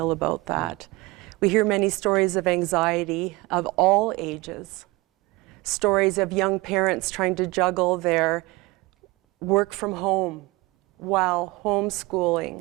about that? We hear many stories of anxiety of all ages. Stories of young parents trying to juggle their work from home while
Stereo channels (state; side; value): quieter; left; 22.9 dB